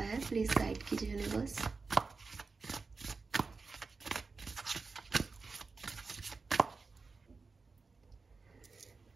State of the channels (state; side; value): quieter; left; 4.3 dB